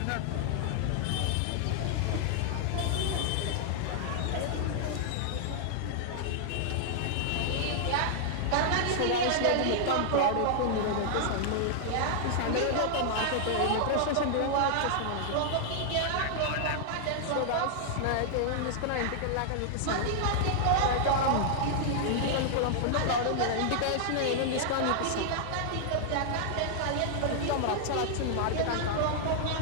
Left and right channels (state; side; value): different; both; correlation -0.01